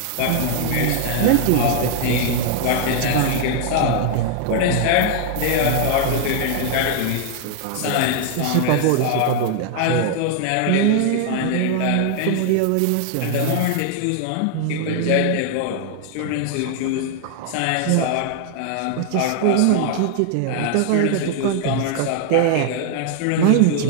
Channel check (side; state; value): both; different; correlation 0.00